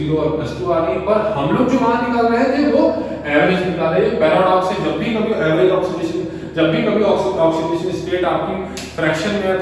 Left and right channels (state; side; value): identical; both; correlation 1.00